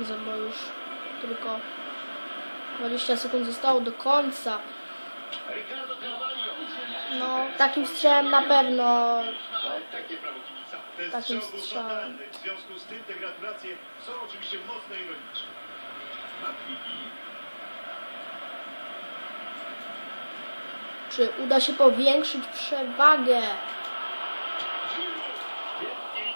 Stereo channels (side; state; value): both; inverted; correlation -1.00